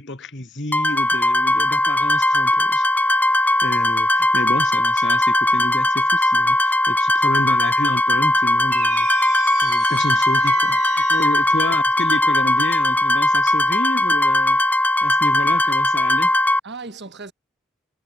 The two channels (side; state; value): both; normal; correlation 0.78